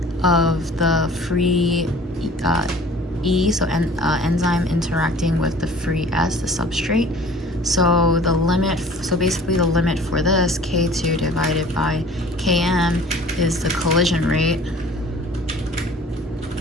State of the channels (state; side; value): normal; both; correlation 0.48